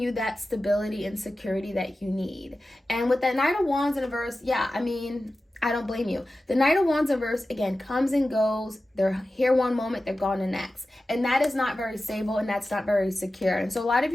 that stability and security that you need. And with that Knight of Wands in reverse, I don't blame you. The Knight of Wands in reverse, again, comes and goes. They're here one moment, they're gone the next. And that is not very stable, and that's not very secure. And so a lot of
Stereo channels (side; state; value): both; normal; correlation 0.94